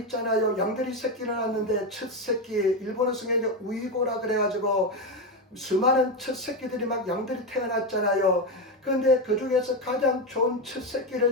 있잖아요. 양들이 새끼를 낳는데 첫 새끼 일본어 성경에 우이고라 그래가지고 수많은 첫 새끼들이 막 양들이 태어났잖아요. 그런데 그 중에서 가장 좋은 첫 새끼를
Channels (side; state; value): both; normal; correlation 0.12